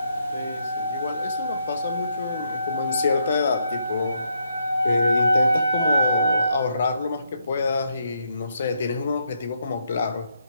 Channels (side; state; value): both; inverted; correlation -0.78